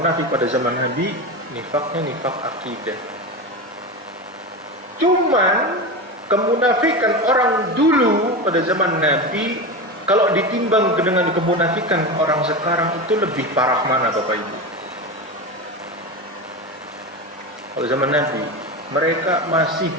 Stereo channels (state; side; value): normal; both; correlation 0.22